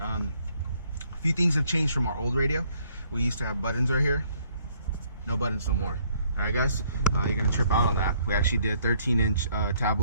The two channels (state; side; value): inverted; both; correlation -0.66